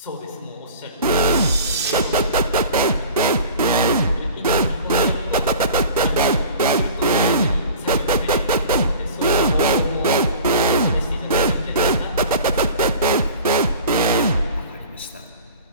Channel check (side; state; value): both; inverted; correlation -0.42